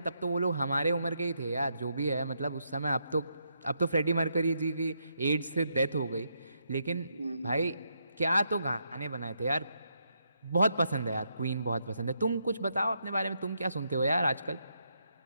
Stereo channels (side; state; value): both; inverted; correlation -0.79